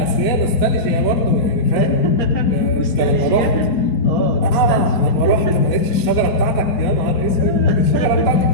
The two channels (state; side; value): late; right; 4.1 ms